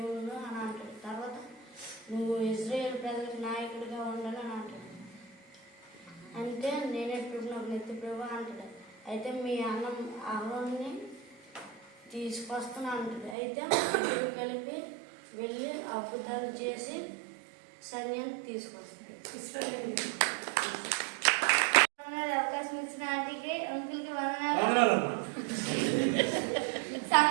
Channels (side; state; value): left; drops out; at 13.4 s